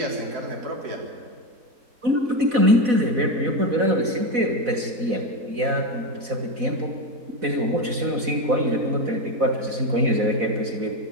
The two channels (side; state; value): left; late; 4.1 ms